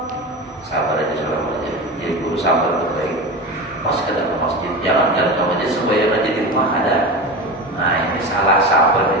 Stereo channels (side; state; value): both; normal; correlation 0.26